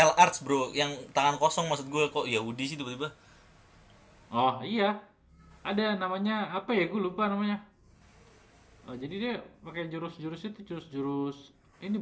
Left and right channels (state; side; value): identical; both; correlation 1.00